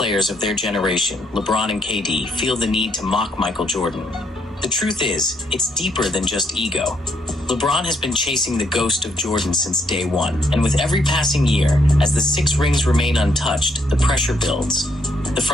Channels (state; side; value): normal; both; correlation 0.73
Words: of their generation, LeBron and KD, feel the need to mock Michael Jordan? The truth is, it's deeper than just ego. LeBron has been chasing the ghost of Jordan since day one, and with every passing year, as the 6 rings remain untouched, the pressure builds. The